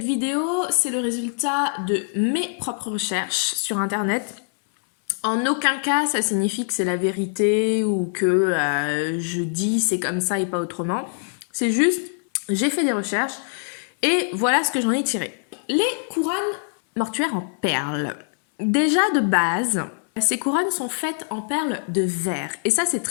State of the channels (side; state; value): right; silent; 63 dB below the other